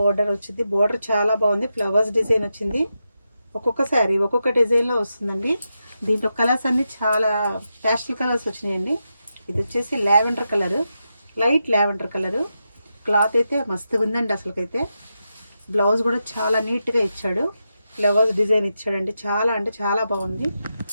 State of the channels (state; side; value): inverted; both; correlation -0.88